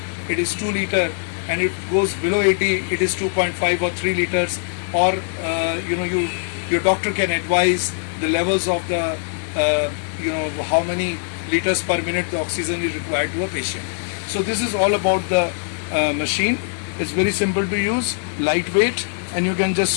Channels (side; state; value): right; silent; 58 dB below the other